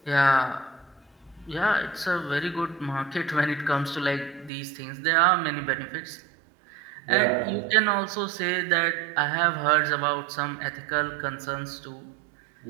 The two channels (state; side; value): drops out; left; at 4.5 s